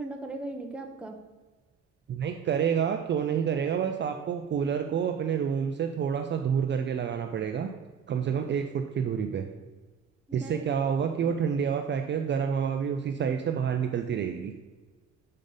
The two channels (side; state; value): left; quieter; 7.1 dB